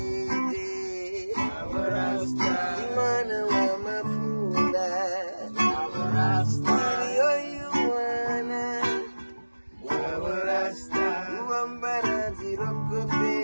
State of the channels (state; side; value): inverted; both; correlation -1.00